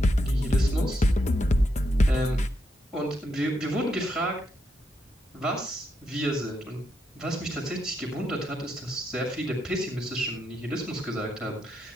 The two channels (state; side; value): normal; both; correlation 0.81